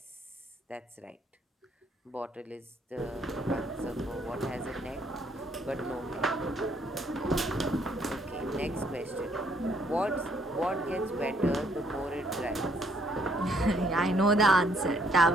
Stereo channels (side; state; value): both; normal; correlation 0.67